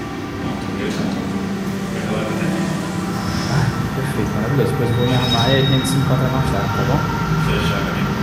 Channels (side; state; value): both; identical; correlation 1.00